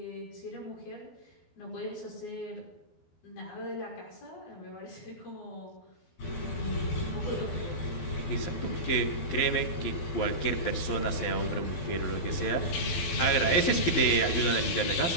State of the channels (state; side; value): late; right; 12 ms